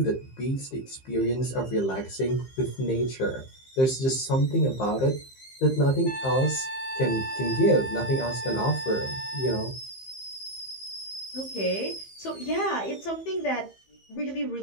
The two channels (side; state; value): right; late; 15 ms